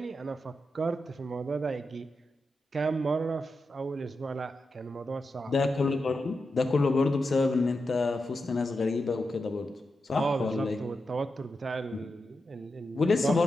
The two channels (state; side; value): normal; both; correlation 0.88